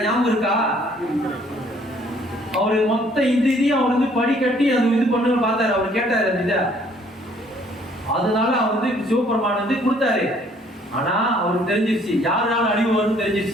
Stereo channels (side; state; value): both; normal; correlation 0.61